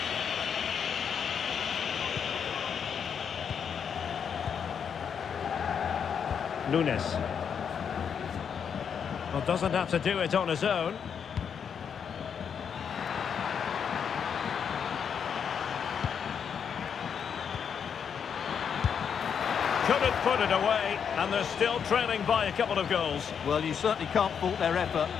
Nunes. Well, doesn't have to do it on his own. Couldn't put it away, and they're still trailing by a couple of goals. Well, you certainly can't fault their effort,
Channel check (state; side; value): quieter; right; 7.3 dB